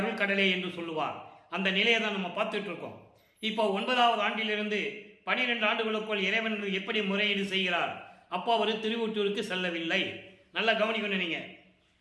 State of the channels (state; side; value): identical; both; correlation 1.00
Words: கடலே என்று சொல்லுவார். அந்த நிலையை தான் நம்ம பார்த்துட்டு இருக்கோம். இப்போ 9வது ஆண்டிலிருந்து 12 ஆண்டுகளுக்குள் இறைவன் எப்படி முறையீடு செய்கிறார். அப்போ அவர் திருவொற்றூருக்கு செல்லவில்லை. நல்லா கவனிக்கணும் நீங்க.